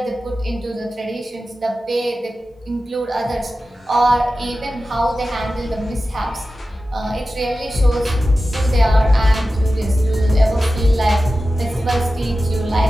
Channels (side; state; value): both; normal; correlation 0.94